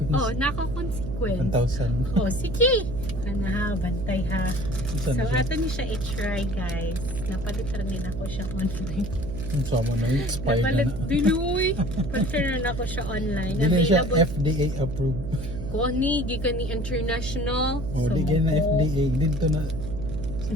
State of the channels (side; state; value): right; noise; hum, 7 dB below the sound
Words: Oh, naka-consequence. 1,000. Oh, sige. Ano ha, bantay ha. So, Saan siya? ato niyo siya i-try guys. Napalitan rin ako siya online. So mo na expired Napalit, na. dinuy. Palitan ako siya online. Hindi siya Available. FDA approved. Koni, gikan ni international. Oh, di ganyan na FDA. Dito na.